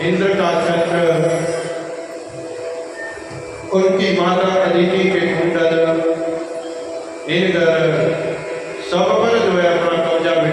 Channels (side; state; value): both; identical; correlation 1.00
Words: इंद्र का छत्र, उनकी माता अदिति के कुंडल, इनकर सब पर जो है अपना कब्जा